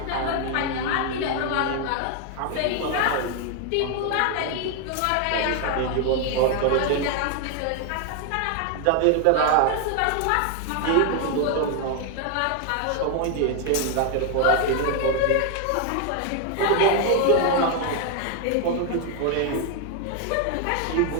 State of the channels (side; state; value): both; different; correlation 0.01